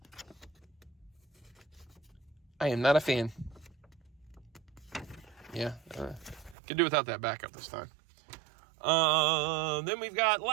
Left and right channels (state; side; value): drops out; left; at 6.6 s